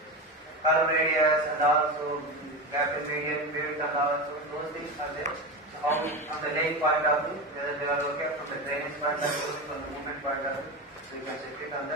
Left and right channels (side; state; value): both; normal; correlation 0.21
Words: curve radius and also gap in median, width and also those things are there. So how from the laying point of view, whether they are okay from the drainage point of view, from the movement point of view, so you can check it on